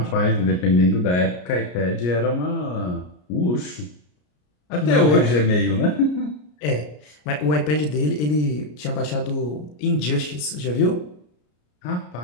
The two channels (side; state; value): right; late; 33 ms